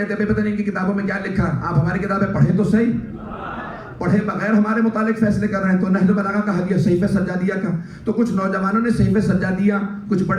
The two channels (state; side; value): identical; both; correlation 1.00